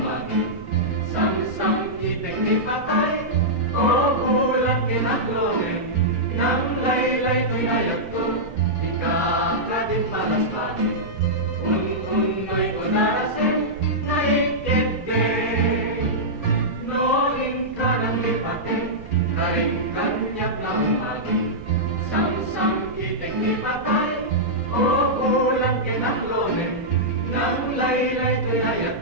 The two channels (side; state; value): right; noise; rumble, 16 dB below the sound